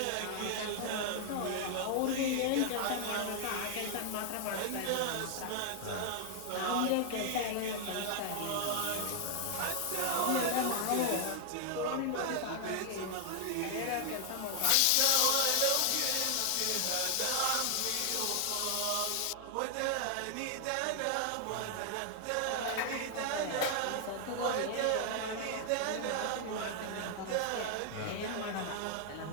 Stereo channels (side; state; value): both; different; correlation 0.00